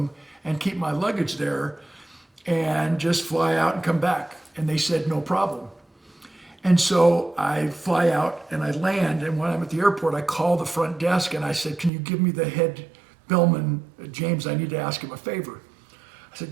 and keep my luggage there and just fly out and come back. And they said, no problem. And so I fly out and I land, and when I'm at the airport, I call the front desk and I said, can you give me the head bellman, James, I need to ask him a favor. I said,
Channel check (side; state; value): left; drops out; at 11.9 s